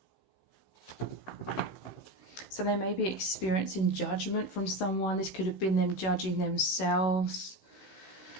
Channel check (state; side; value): late; right; 16 ms